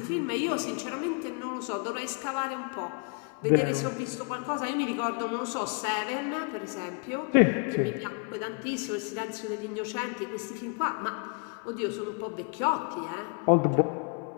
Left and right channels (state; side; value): quieter; right; 37.0 dB